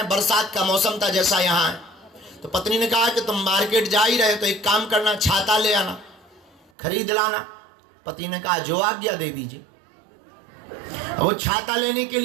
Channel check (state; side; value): drops out; left; at 6.7 s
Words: बरसात का मौसम था जैसा यहाँ है। तो पत्नी ने कहा कि तुम मार्केट जा ही रहे तो एक काम करना, छाता ले आना, खरीद लाना। पति ने कहा जो आज्ञा दे दीजिए। वो छाता लेने के